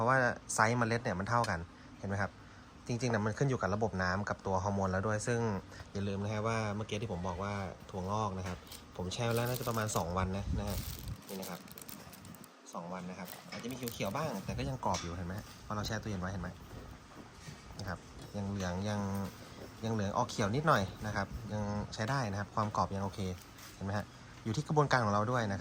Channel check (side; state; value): both; identical; correlation 1.00